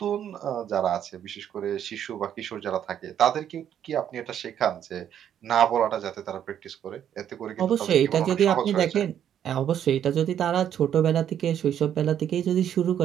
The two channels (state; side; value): quieter; left; 9.7 dB